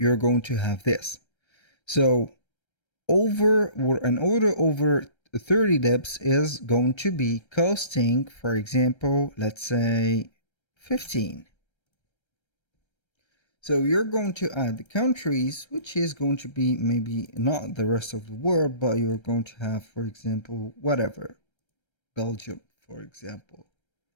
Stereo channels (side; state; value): right; late; 1.3 ms